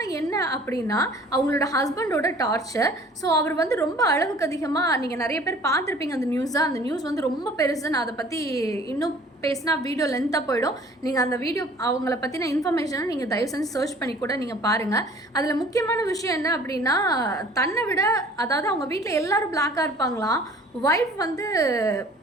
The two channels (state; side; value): normal; both; correlation 0.51